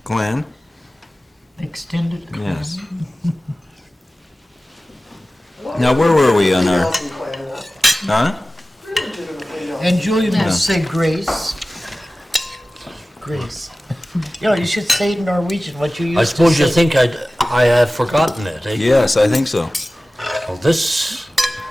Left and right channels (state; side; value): normal; both; correlation 0.96